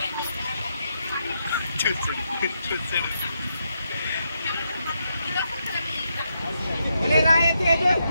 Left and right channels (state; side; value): inverted; both; correlation -0.81